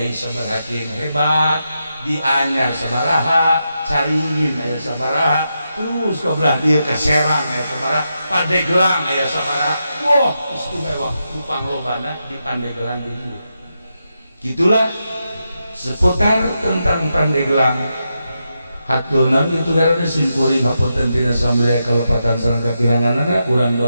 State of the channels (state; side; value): inverted; both; correlation -0.86